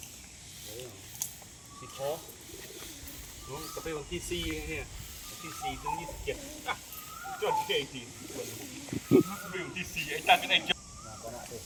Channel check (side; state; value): both; identical; correlation 1.00